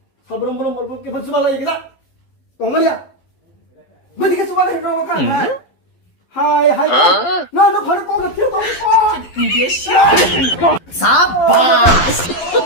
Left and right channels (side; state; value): right; late; 11 ms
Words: 살부름 깨 받지 말라 얘기다 똥말이야 뭐 네가 수박을 해놓고 가 하이 너 바로 꺼가 필요도 없어 Sapas.